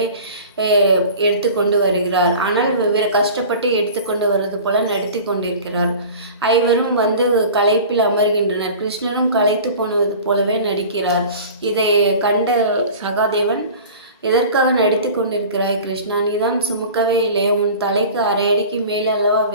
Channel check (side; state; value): both; inverted; correlation -0.39